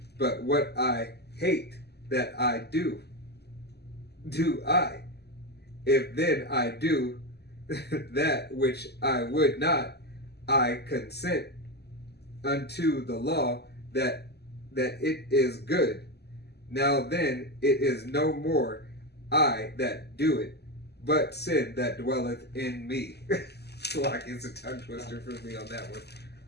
But what I hate that I do I. If then I do that which I would not, I consent unto the law that it is good. Now then it is no more I that do it, but sin that dwelleth in me." It's a tongue twister for me on that one.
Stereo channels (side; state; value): right; late; 0.48 ms